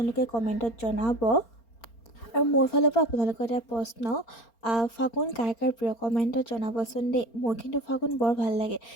কমেণ্টত জনাব। আৰু মোৰ ফালৰ পৰা আপোনালোকৰ এটা প্ৰশ্ন, ফাগুন কাৰ কাৰ প্ৰিয় কমেণ্টত জনাবচোন দেই। মোৰ কিন্তু ফাগুন বৰ ভাল লাগে।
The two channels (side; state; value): right; late; 4.4 ms